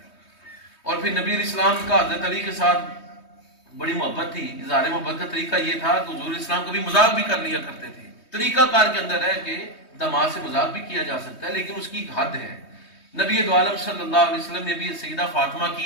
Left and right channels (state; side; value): late; right; 3.2 ms